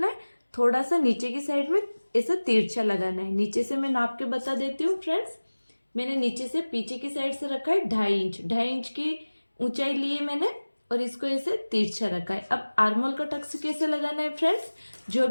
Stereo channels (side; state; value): both; inverted; correlation -1.00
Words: है, थोड़ा सा नीचे की साइड में ऐसा तिरछा लगाना है। नीचे से मैं नाप के बता देती हूँ फ्रेंड्स। मैंने नीचे से पीछे की साइड से रखा है 2.5 इंच की ऊंचाई ली है मैंने, और इसको ऐसे तिरछा रखा है। अब आर्मोल का टक्स कैसे लगाना है फ्रेंड्स, जो